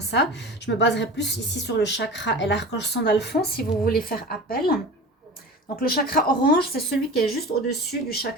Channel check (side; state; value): both; normal; correlation 0.35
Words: ça. Je me baserai plus ici sur le chakra et l'archange Sandalphon si vous voulez faire appel. Donc le chakra orange, c'est celui qui est juste au-dessus du